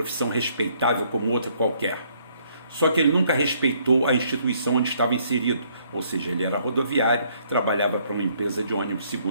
respeitável como outra qualquer. Só que ele nunca respeitou a instituição onde estava inserido, ou seja, ele era rodoviário, trabalhava para uma empresa de ônibus,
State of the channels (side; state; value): both; inverted; correlation -0.67